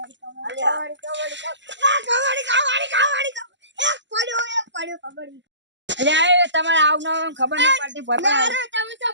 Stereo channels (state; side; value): late; left; 0.53 ms